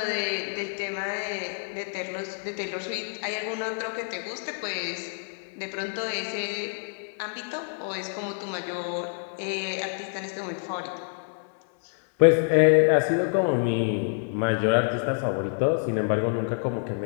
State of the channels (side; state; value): right; silent; 60 dB below the other